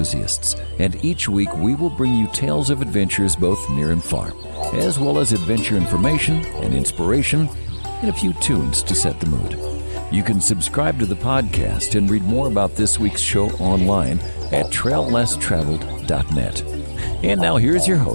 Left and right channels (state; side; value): inverted; both; correlation -1.00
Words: and each week we will bring you tales of adventures both near and far, as well as adventure information and inspiration, and a few tunes to set the mood. You can subscribe to the podcast and read more about this week's show online at traillesstraveled.net. And now here's your